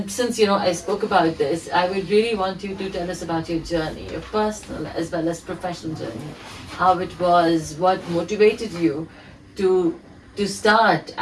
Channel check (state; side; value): identical; both; correlation 1.00